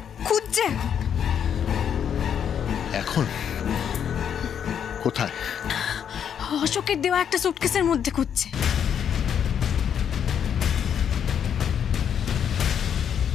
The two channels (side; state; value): right; quieter; 8.4 dB